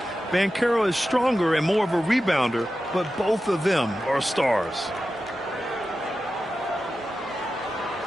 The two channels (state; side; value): normal; both; correlation 0.92